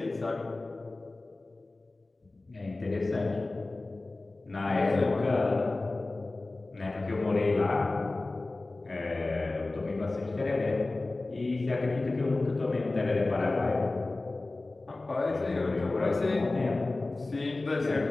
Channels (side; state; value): right; quieter; 3.1 dB